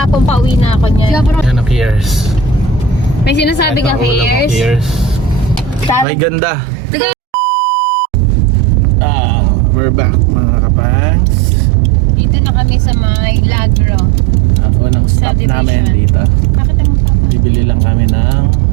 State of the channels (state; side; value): drops out; left; at 6.1 s